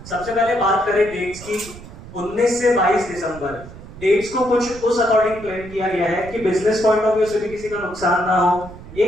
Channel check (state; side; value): noise; right; rumble, 16 dB below the sound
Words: सबसे पहले बात करें डेट्स की, 19 से 22 दिसंबर डेट्स को कुछ उस अकॉर्डिंग प्लान किया गया है कि बिजनेस पॉइंट ऑफ व्यू से भी किसी का नुकसान ना हो।